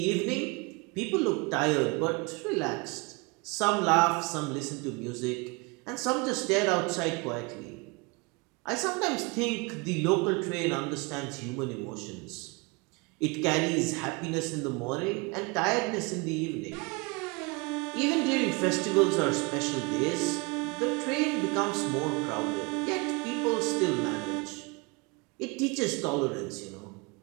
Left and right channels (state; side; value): quieter; left; 28.2 dB